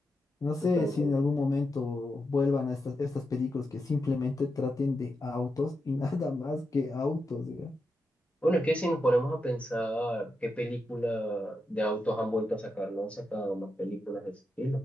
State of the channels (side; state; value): both; normal; correlation 0.86